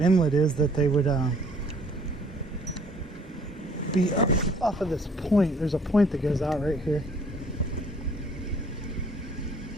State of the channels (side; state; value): both; normal; correlation 0.59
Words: is that they would be up off of this point. There's a point that goes out right here.